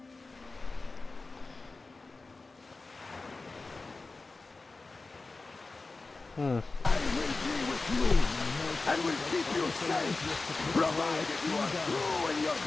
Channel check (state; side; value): quieter; right; 3.7 dB